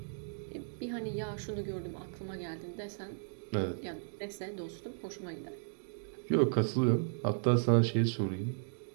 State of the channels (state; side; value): silent; left; digital silence